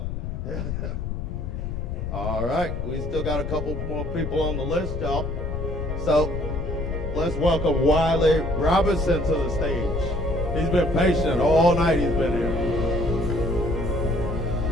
All right, we still got a couple more people on the list, y'all. So let's welcome Wiley Robinson to the stage. He's been patient all night. He's been here.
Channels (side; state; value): left; noise; rumble, 4 dB below the sound